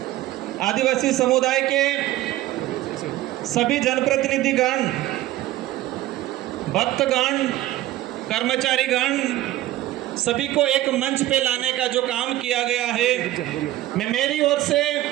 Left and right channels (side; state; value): left; quieter; 15.2 dB